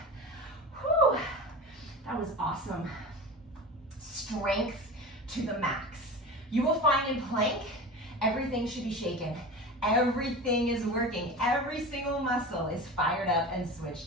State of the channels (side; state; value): both; normal; correlation 0.31